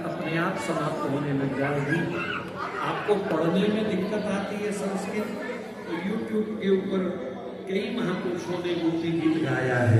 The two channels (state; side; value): identical; both; correlation 1.00